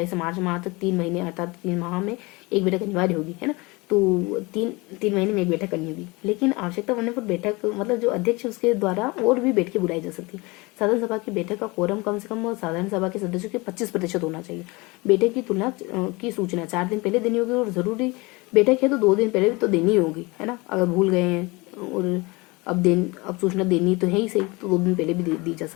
से मार्च माह तक 3 महीने अर्थात 3 माह में एक बैठक अनिवार्य होगी, है ना। तो तीन महीने में एक बैठक करनी होगी, लेकिन आवश्यकता पड़ने पर बैठक मतलब जो अध्यक्ष उसके द्वारा और भी बैठकें बुलाई जा सकती है। साधारण सभा की बैठक का कोरम कम से कम साधारण सभा के सदस्यों के 25% होना चाहिए। बैठक की तुलना की सूचना 4 दिन पहले देनी होगी, और जरूरी बैठक है तो 2 दिन पहले भी तो देनी होगी, है ना। अगर भूल गए हैं और अब सूचना देनी तो है ही सही, तो 2 दिन पहले भी दी जा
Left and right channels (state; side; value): quieter; right; 24.9 dB